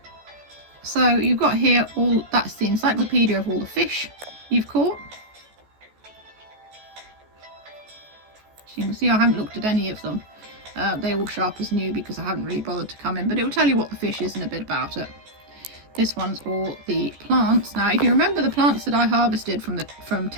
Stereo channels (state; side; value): late; left; 14 ms